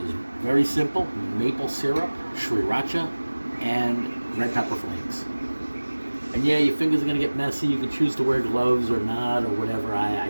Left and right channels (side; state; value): both; inverted; correlation -1.00